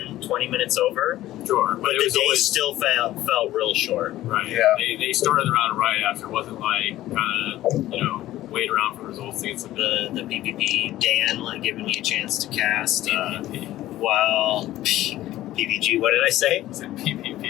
20 minutes over. Sure. But the day still felt real short. Right. Yeah. They started the round right after. It wasn't like kind of, wait around for results to get some. The PPP, Dan, like giving me a chance to cast. Well, PPG, what did I say? I said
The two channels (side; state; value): right; quieter; 14.8 dB